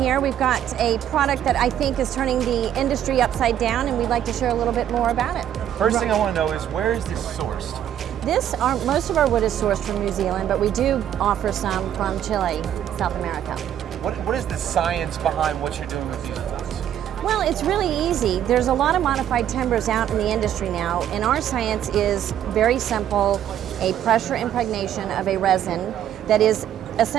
We've got a product that I think is turning the industry upside down, and we'd like to share a little bit more about it. First thing I want to know is, where is this sourced? Most of our wood is sourced from New Zealand, but we do offer some from Chile, South America. What is the science behind what you're doing with these boards? Well, it's really easy. There's a lot of modified timbers out in the industry now, and our science is very simple, a pressure impregnation of a resin that is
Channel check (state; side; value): quieter; left; 10.6 dB